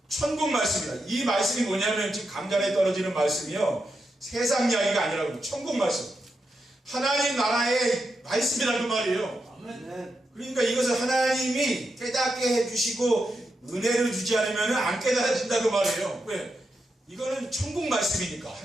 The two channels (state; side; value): normal; both; correlation 0.86